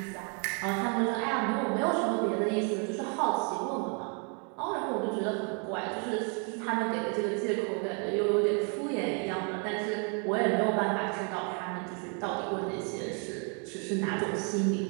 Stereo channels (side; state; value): left; quieter; 38.3 dB